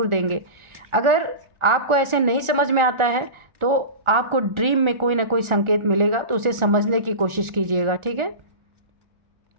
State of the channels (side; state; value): left; late; 1.4 ms